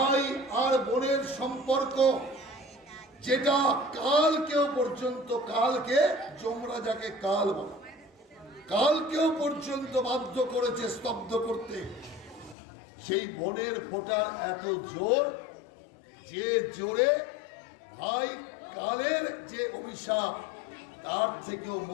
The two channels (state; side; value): drops out; right; at 12.6 s